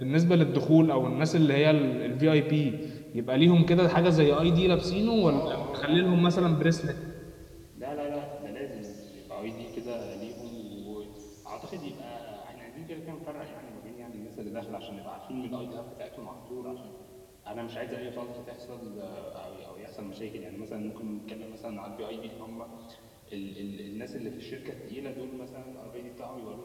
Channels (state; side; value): identical; both; correlation 1.00